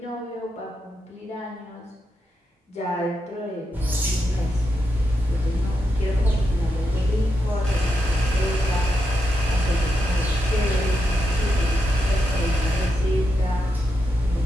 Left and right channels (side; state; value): both; normal; correlation 0.85